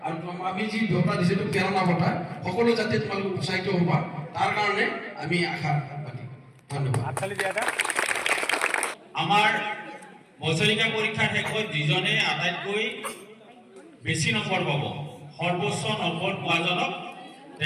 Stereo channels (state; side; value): identical; both; correlation 1.00